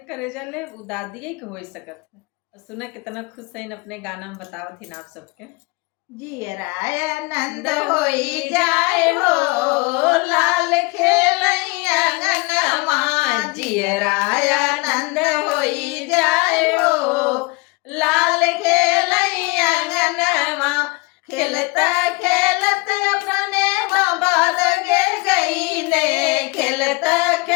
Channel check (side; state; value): right; quieter; 26.2 dB